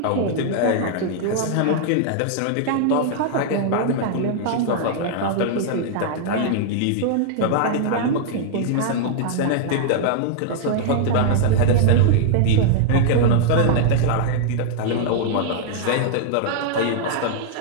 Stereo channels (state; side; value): different; both; correlation -0.01